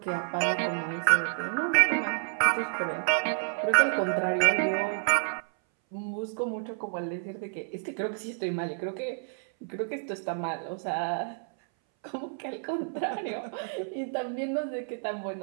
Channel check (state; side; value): silent; left; 58 dB below the other